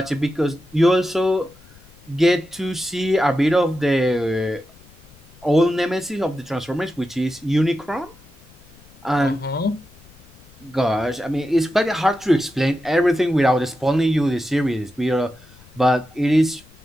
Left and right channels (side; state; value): left; noise; rumble, 25 dB below the sound